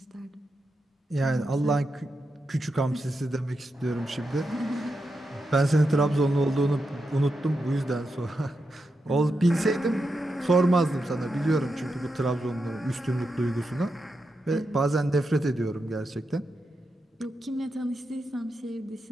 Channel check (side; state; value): both; normal; correlation 0.86